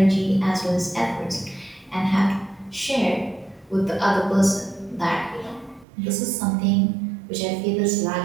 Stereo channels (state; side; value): drops out; left; at 5.9 s